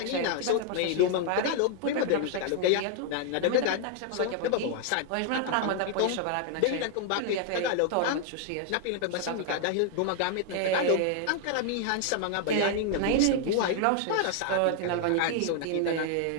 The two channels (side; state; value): both; different; correlation 0.00